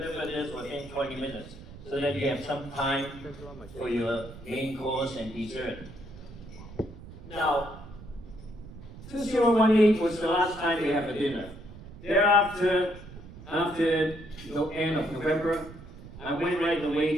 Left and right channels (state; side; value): noise; right; rumble, 16 dB below the sound